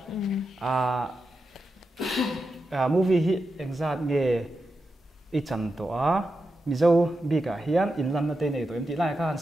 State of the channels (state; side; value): normal; both; correlation 0.89